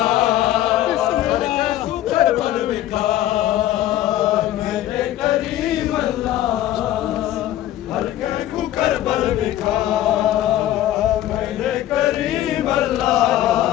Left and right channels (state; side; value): quieter; right; 13.4 dB